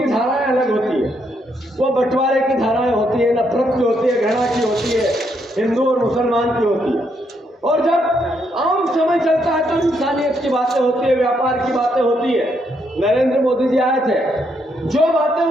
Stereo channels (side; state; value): both; normal; correlation 0.76